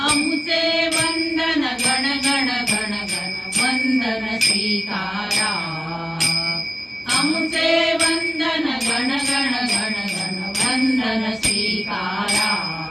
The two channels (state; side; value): identical; both; correlation 1.00